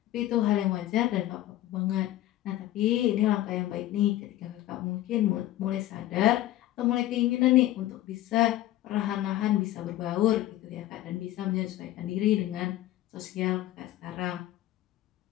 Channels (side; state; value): right; quieter; 14.7 dB